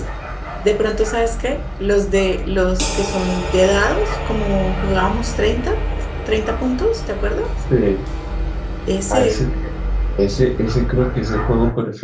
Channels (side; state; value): both; identical; correlation 1.00